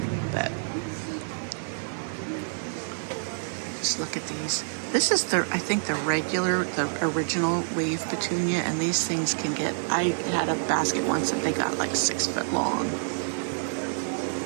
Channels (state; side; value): silent; left; digital silence